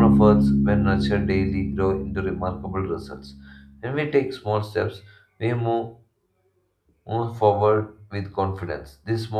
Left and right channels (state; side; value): identical; both; correlation 1.00